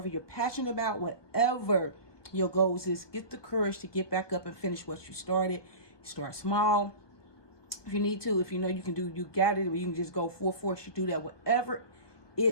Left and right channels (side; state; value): right; late; 1.3 ms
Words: you're passionate about, whatever your goals is, get the courage to get back up and finish what you started. Start small. If you need to, if you know you can do, you got it, or you can just go full force, you do that. Whatever